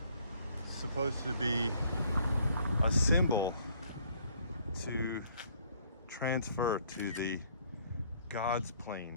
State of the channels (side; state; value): both; inverted; correlation -0.63